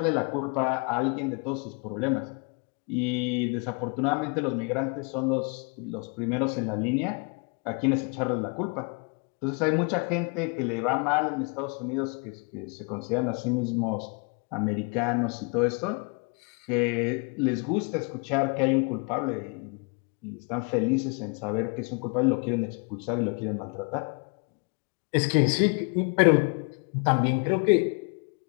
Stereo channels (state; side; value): quieter; right; 34.8 dB